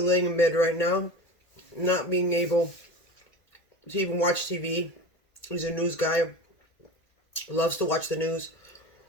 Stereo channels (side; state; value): right; late; 1.8 ms